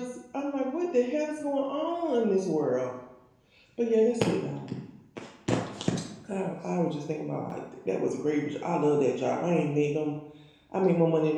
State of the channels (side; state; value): both; identical; correlation 1.00